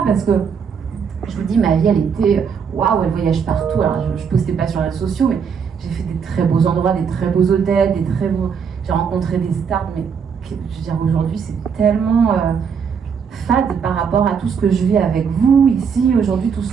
parce que, je vous dis, ma vie, elle était, waouh, elle voyage partout. Alors, je ne postais pas sur les réseaux sociaux, mais j'ai fait des très beaux endroits, des très beaux hôtels, j'ai rencontré des stars, mais je veux dire, aujourd'hui, c'est tellement fade par rapport à tout ce que je vis avec vous, ici, aujourd'hui, tout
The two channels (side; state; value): left; quieter; 6.6 dB